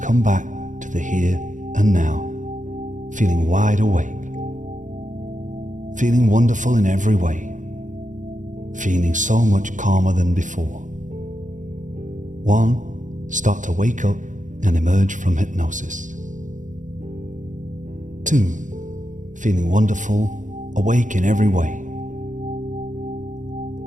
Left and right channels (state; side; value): late; left; 0.37 ms